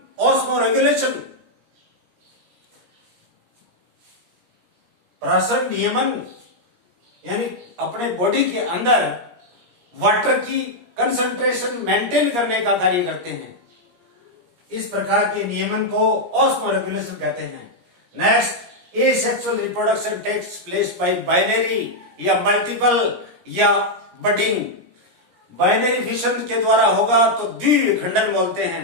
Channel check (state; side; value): late; left; 17 ms